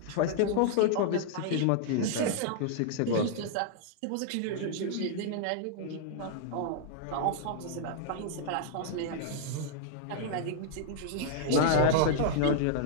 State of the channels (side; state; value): both; different; correlation -0.01